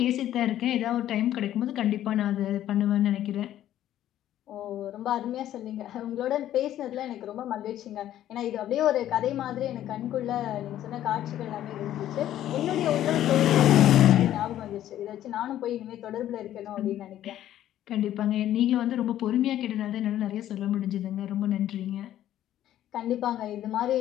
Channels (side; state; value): right; quieter; 12.2 dB